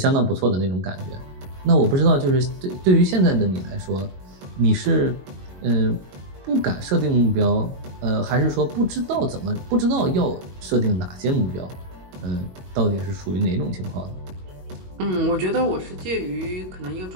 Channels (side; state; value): left; late; 22 ms